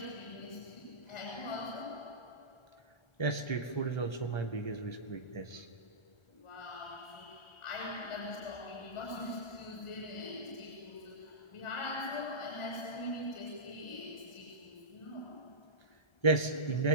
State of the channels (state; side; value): late; right; 1.3 ms